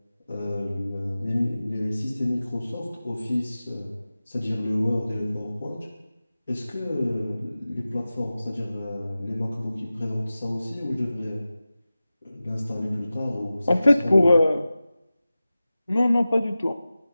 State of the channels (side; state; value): both; inverted; correlation -0.96